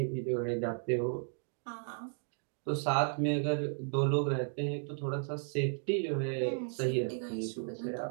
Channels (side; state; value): left; silent; 55 dB below the other